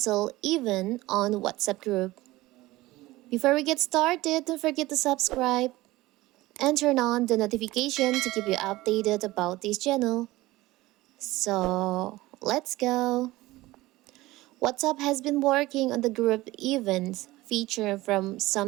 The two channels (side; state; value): left; quieter; 18.6 dB